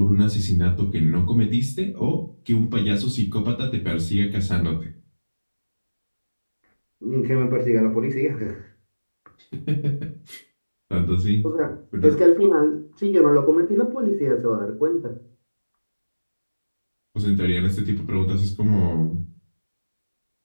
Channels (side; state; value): both; inverted; correlation -1.00